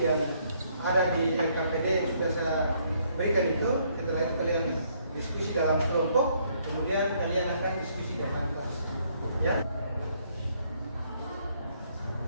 yang ada di LKPD yang sudah saya berikan itu. Setelah itu kalian diskusi dalam kelompok, kemudian kalian akan diskusi di kantor, ya.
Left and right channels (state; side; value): inverted; both; correlation -0.68